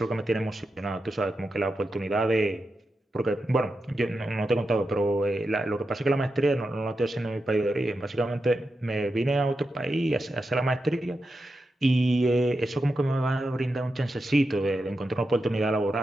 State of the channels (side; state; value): both; normal; correlation 0.89